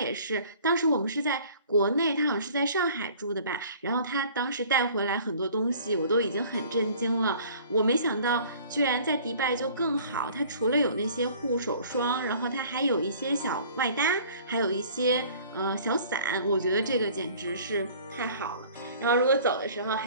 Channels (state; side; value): inverted; both; correlation -0.51